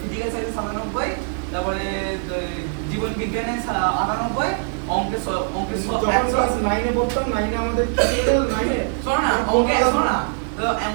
ফিজিক্যাল সায়েন্সে 97, তারপরে জীবন বিজ্ঞানে 98, অঙ্কে যখন ক্লাস 9 এ পড়তাম, 9 এ আমাদের কি ছিল 9 এ শোনো না, অঙ্কে 100 না, তো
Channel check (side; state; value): left; silent; 57 dB below the other